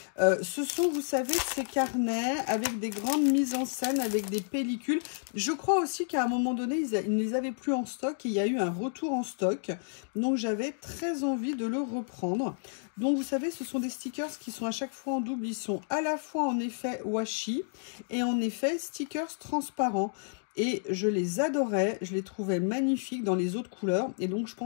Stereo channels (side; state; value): right; silent; digital silence